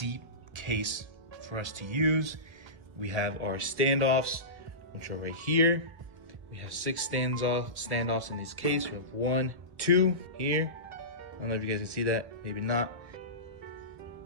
case for us to use. We have our standoffs, which are right here. We have 6 standoffs in this case. We have 1, 2 here. I don't know if you guys can see that, maybe not.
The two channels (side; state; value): left; late; 1.1 ms